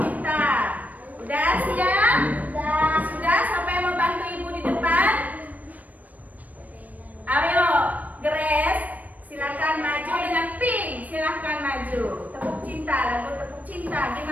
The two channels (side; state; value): left; late; 0.075 ms